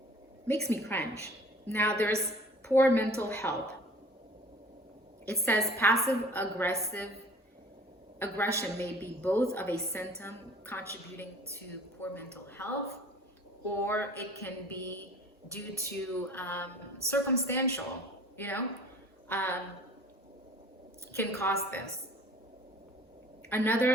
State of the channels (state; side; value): normal; both; correlation 0.48